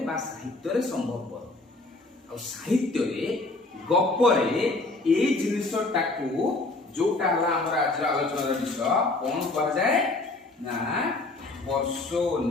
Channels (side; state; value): right; quieter; 3.1 dB